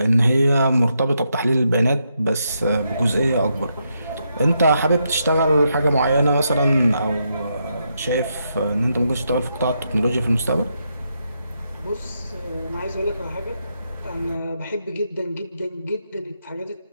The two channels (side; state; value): both; inverted; correlation -0.81